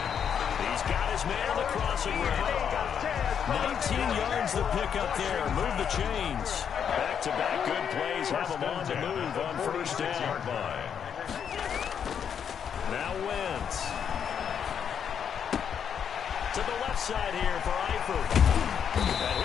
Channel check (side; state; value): right; quieter; 7.9 dB